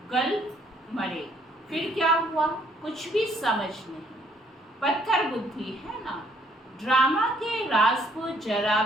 गल मरे, फिर क्या हुआ कुछ भी समझ नहीं। पत्थर बुद्धि है ना। ड्रामा के राज को जरा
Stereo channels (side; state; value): both; normal; correlation 0.66